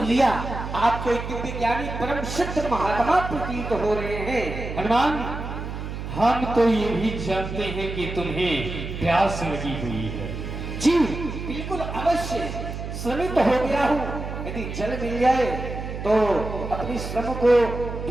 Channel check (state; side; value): noise; right; hum, 7 dB below the sound